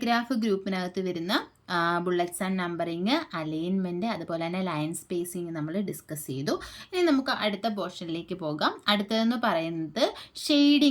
ഗ്രൂപ്പിനകത്ത് വരുന്ന ബുള്ളറ്റ്സ് ആൻഡ് നമ്പറിങ്, അലൈൻമെൻറ്റ്, അതുപോലെ തന്നെ ലൈൻ സ്പേസിങ് നമ്മൾ ഡിസ്കസ് ചെയ്തു. ഇനി നമുക്ക് അടുത്ത പോർഷനിലേക്ക് പോകാം. അടുത്തതെന്ന് പറയുന്നത്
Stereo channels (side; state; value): both; identical; correlation 1.00